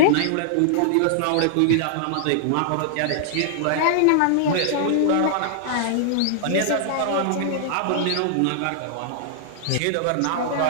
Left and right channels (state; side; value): different; both; correlation -0.01